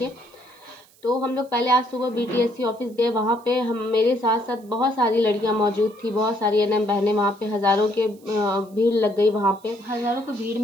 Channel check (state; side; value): noise; right; hiss, 29 dB below the sound